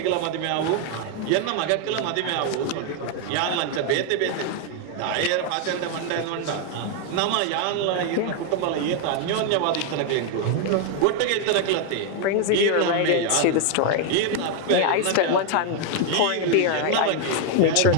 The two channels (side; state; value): both; different; correlation 0.01